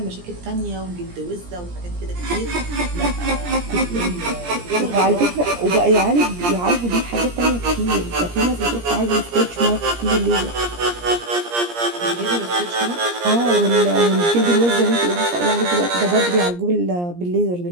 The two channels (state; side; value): late; left; 17 ms